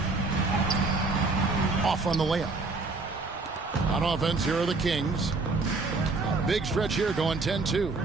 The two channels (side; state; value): left; quieter; 3.7 dB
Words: Off on the layup. On offense, here are the Kings. A big stretch here going 10-2.